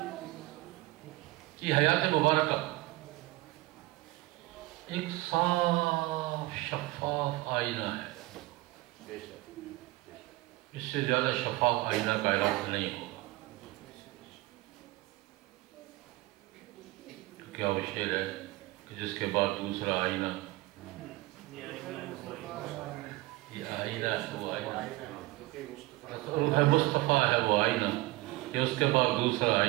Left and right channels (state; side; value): quieter; left; 20.0 dB